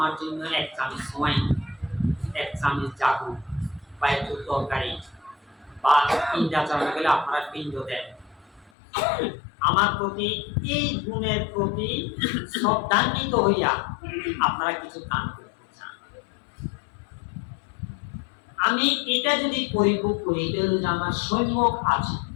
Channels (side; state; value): right; drops out; at 8.7 s